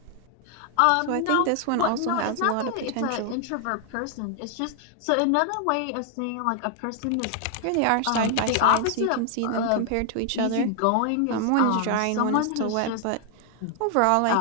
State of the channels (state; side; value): different; both; correlation 0.00